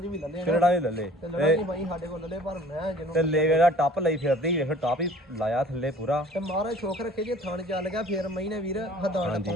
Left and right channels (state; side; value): normal; both; correlation 0.50